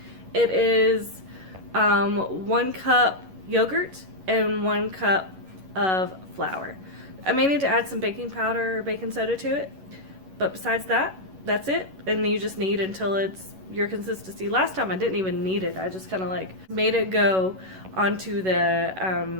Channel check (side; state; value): left; late; 11 ms